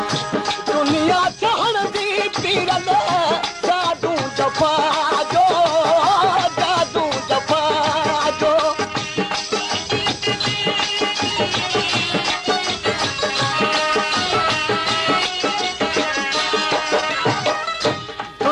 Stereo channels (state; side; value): identical; both; correlation 1.00